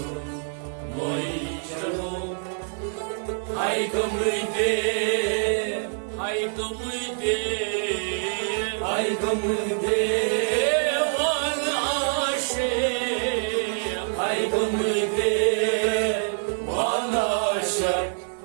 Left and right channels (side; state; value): left; silent; 61 dB below the other